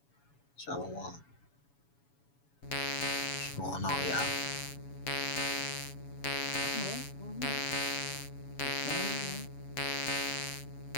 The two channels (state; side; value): late; right; 7.1 ms